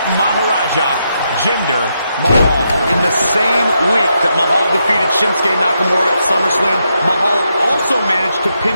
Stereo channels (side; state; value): both; inverted; correlation -0.81